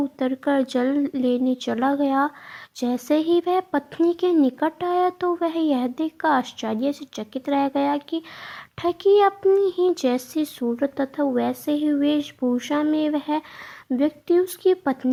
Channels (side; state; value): both; identical; correlation 1.00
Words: जल लेने चला गया। जैसे ही वह पत्नी के निकट आया तो वह यह देखकर आश्चर्य से चकित रह गया कि ठगी अपनी ही जैसी सूरत तथा वैसे ही वेशभूषा में वह व्यक्ति उसकी